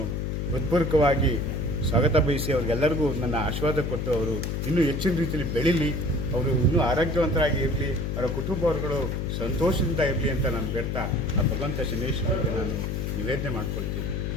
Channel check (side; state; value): left; noise; hum, 1 dB below the sound